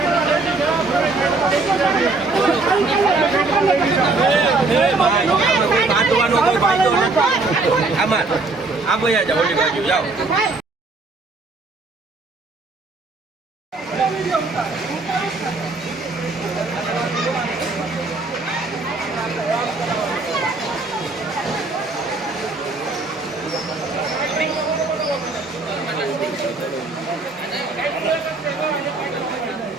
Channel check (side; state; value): left; quieter; 3.5 dB